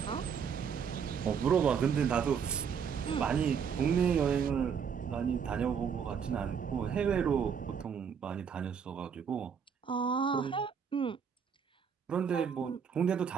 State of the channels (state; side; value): quieter; left; 6.9 dB